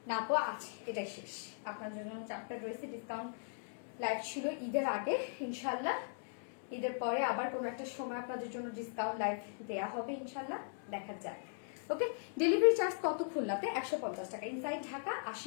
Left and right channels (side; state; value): right; silent; digital silence